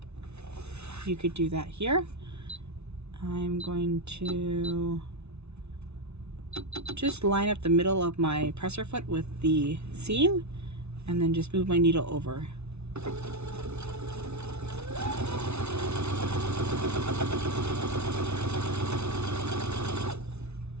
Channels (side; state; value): left; late; 0.81 ms